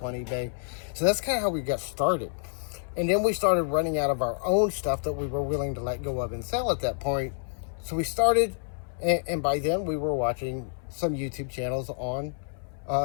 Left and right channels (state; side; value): silent; right; 59 dB below the other